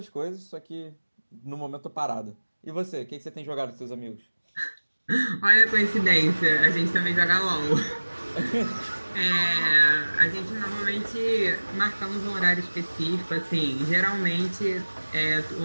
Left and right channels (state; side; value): inverted; both; correlation -1.00